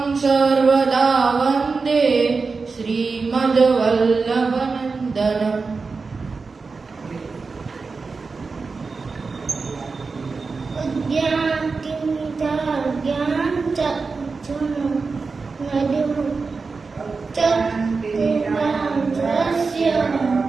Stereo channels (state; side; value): quieter; left; 4.4 dB